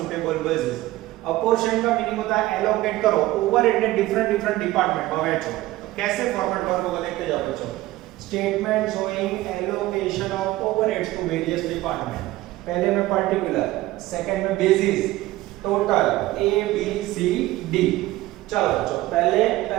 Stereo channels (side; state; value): left; quieter; 17.3 dB